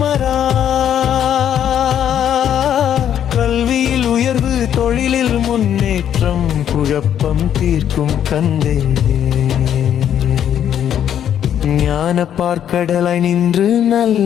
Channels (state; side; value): quieter; right; 9.7 dB